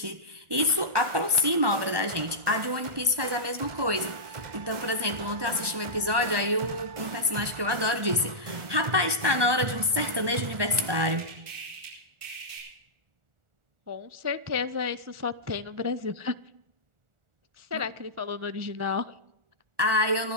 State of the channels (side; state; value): left; late; 1.2 ms